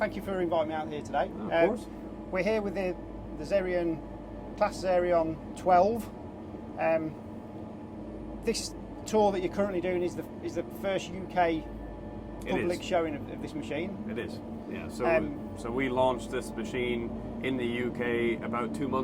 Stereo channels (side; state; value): both; identical; correlation 1.00